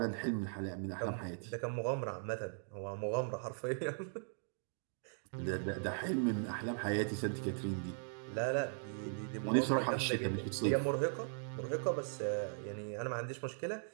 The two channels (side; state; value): left; silent; digital silence